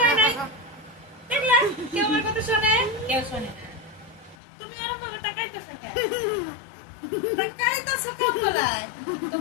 নাই দেখলা কেউ আমার কথা শোনে কেউ শোনে না তুমি এরকম ভাবে তাকাইতেছো কেন তাকাইতেছো কেন বলাই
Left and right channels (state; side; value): drops out; right; at 4.4 s